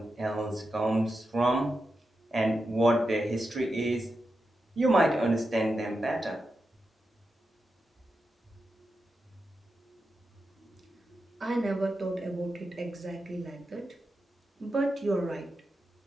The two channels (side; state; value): both; normal; correlation 0.89